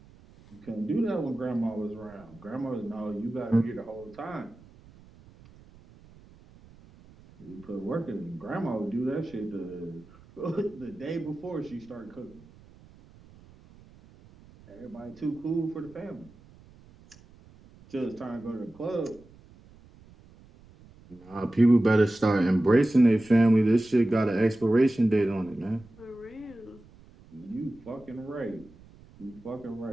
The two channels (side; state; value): right; noise; rumble, 24 dB below the sound